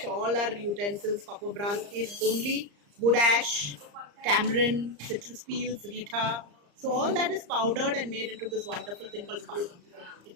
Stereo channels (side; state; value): left; late; 34 ms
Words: all our utensils. Copper brass is only wood ash, tamarind, citrus peels, rita. So all that is powdered and made into this wonderful thing called sparkle.